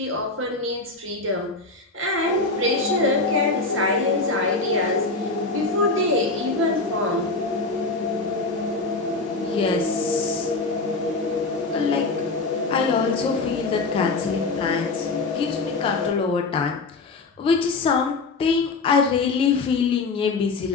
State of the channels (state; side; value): quieter; right; 3.6 dB